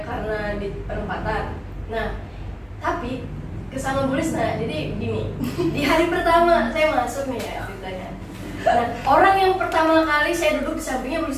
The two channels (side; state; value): both; identical; correlation 1.00